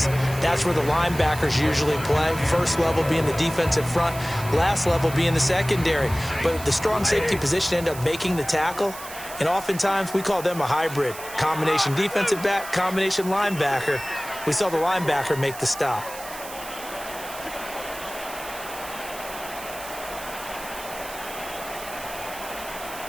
that's where the linebackers usually play. 1st level being the defensive front, last level being the secondary. But the strong safety position ended up making the tackle, and oftentimes we call them a hybrid. Combination defensive back, combination linebacker. We saw the linebacker make the stop.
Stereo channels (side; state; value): right; noise; hiss, 13 dB below the sound